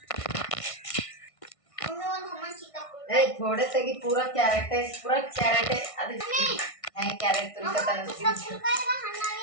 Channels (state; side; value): late; right; 1.6 ms